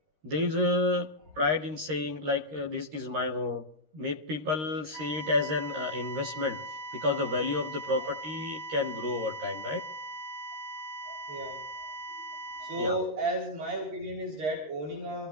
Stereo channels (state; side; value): late; left; 13 ms